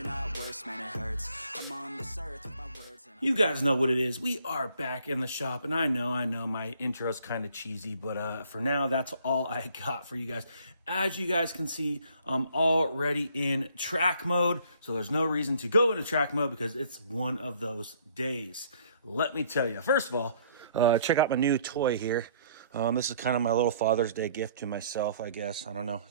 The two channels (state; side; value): inverted; both; correlation -0.60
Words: not worse, man, it hurts. I'm on this earth with my words and You guys know what it is. We are back in the shop, and I know my intro's kind of cheesy, but for now, that's all I got for you guys. As you guys can see, I'm already in track mode, so there's no reason to go into track mode because it's one of those days. Let me tell you, first of all, check out my new toy here. This is kind of my little Father's Day gift to myself, I guess. I don't know,